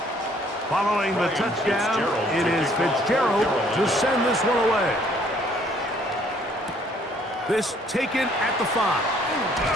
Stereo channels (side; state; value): both; normal; correlation 0.62